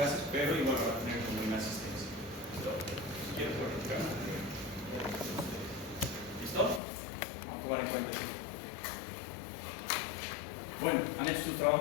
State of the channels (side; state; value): right; drops out; at 6.8 s